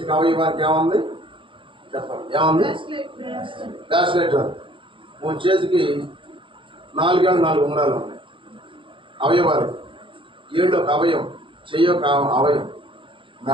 అవయవానికి ఏముంది చెప్పండి? ఏముంది? బ్యాస్లెట్. మూడు చేతికి 4 ఏళ్ళు 4 ఉంగరాలు ఉన్నాయి అవయవాలు. ఏళ్ళు ఒక అవయం, చెయ్యి ఒక అవయం,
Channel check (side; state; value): left; late; 0.25 ms